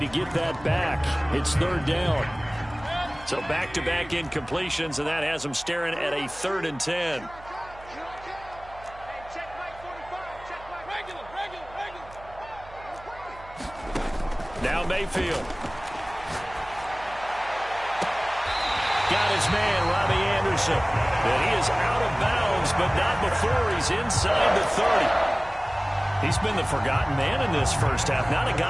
to get that back. It's third down. So back-to-back incompletions, and that has them staring at a 3rd and 10. Now Mayfield. Got his man, Robbie Anderson. And he is out of bounds, but not before he's inside the 30. He's been the forgotten man in this first half. Not a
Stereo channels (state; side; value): noise; right; hum, 20 dB below the sound